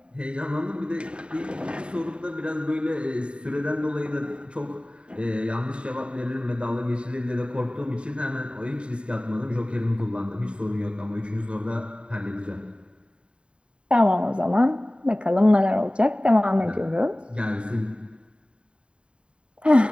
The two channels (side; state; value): left; late; 0.054 ms